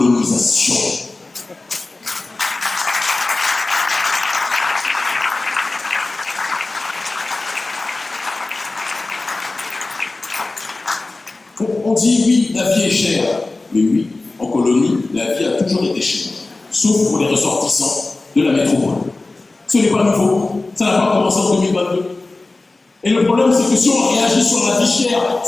On dit oui, la vie est chère. Mais oui, en colonie, la vie a toujours été chère. Sauf pour les ressortissants de la métropole. Ce n'est pas nouveau. Ça n'a pas commencé en 2022. Et le problème, c'est que si on réagit sur la vie chère,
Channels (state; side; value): quieter; right; 3.2 dB